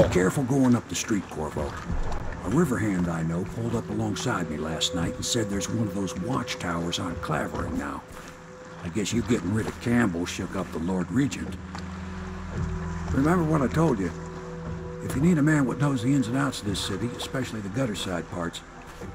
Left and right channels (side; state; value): both; identical; correlation 1.00